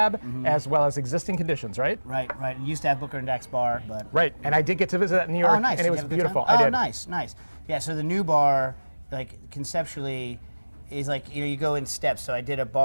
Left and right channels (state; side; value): inverted; both; correlation -1.00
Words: as well as Existing Conditions, right? Right. You used to have Booker and Dax bar, but... Right, and I did get to visit that in New York, nice. and it Did you was have a good beautiful. time? I did. Nice. Yeah, so the new bar, like, conceptually, is like, you go in steps. So I did a